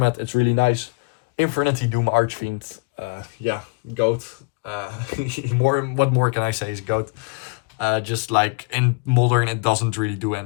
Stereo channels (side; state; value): right; quieter; 31.2 dB